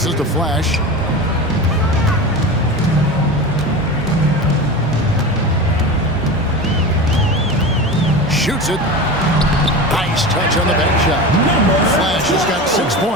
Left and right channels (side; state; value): both; normal; correlation 0.27